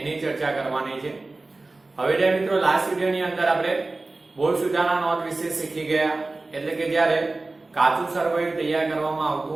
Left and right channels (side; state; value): left; quieter; 3.2 dB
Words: ચર્ચા કરવાની છે। હવે જે મિત્રો લાસ્ટ વિડિયોની અંદર આપણે બોર્ડ સુધારણા નોંધ વિશે શીખી ગયા, એટલે કે જ્યારે કાચું સરવૈયું તૈયાર કરવામાં